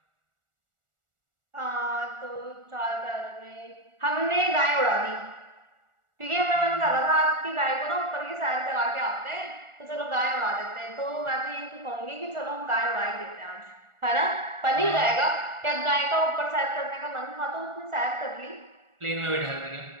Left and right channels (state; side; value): late; left; 1.4 ms